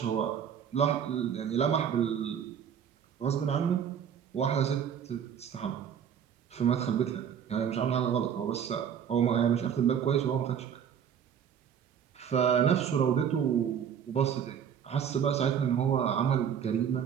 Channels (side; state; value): left; quieter; 8.2 dB